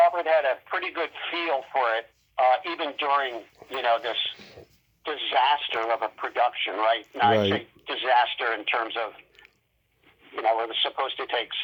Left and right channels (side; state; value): both; identical; correlation 1.00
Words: had a pretty good feel for it, even during, this disaster of a production, right? Now, right. I say disaster in terms of, it was supposed to take